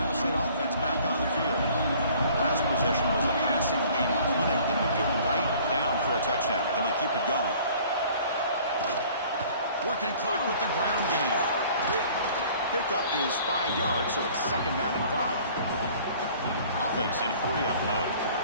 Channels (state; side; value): inverted; both; correlation -0.52